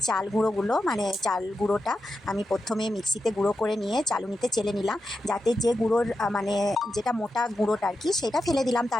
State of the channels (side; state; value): both; normal; correlation 0.89